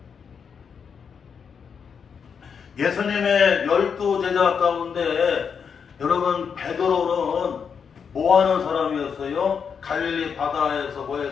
예수님의 12제자 가운데 여러분 베드로는 뭐하는 사람이었어요? 갈릴리 바다에서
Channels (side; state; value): right; quieter; 6.6 dB